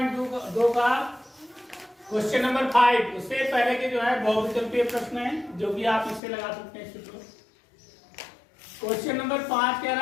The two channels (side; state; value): right; drops out; at 6.2 s